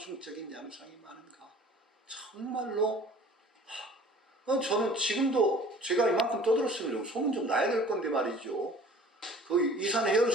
양상이 많은가. 정말로 저는 지금도 제가 이만큼 떠들었으면 좀 소문 좀 나야 될 건데 말이죠. 그 이산 혜연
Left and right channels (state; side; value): normal; both; correlation 0.48